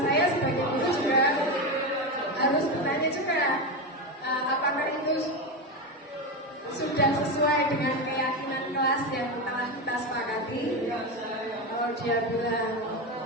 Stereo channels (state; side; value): normal; both; correlation 0.15